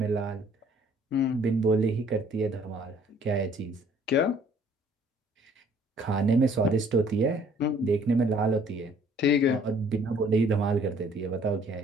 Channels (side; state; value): both; normal; correlation 0.58